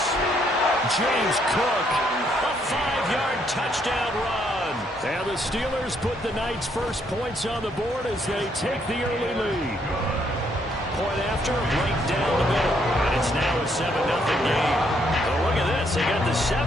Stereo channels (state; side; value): normal; both; correlation 0.71